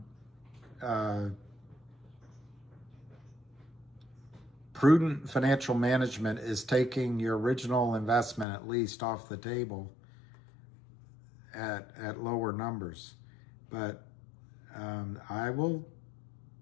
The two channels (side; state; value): right; drops out; at 8.5 s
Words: Prudent financial management is taking your original investment at least off the table at lower numbers. But I will